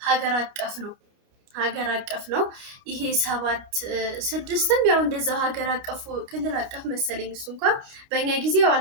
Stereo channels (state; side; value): late; left; 30 ms